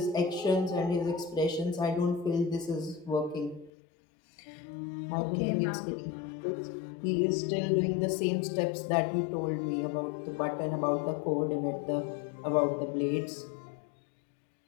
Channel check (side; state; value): right; drops out; at 3.7 s